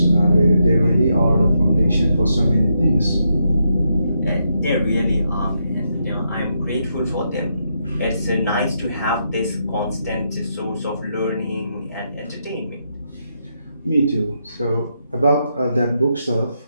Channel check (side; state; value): both; inverted; correlation -0.81